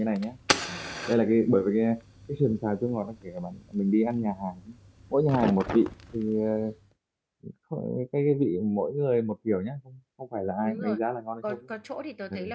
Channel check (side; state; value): both; identical; correlation 1.00